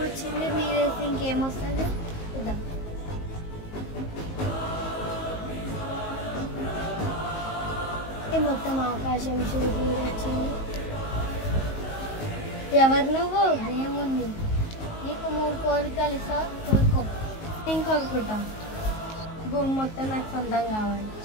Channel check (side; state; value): right; late; 19 ms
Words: వచ్చింది. మీరు వేస్తే ఇంకేమొస్తుంది చూద్దాం. మొత్తం ఆకాశం చూడు వచ్చింది. ఎవరు నువ్వు? ఏముంది నీకు 3 కోరికలు ఇస్తావు, కోరుకో. నేను కోరుకుంటా భూమి మొత్తం నాకు సొంతం కావాలి.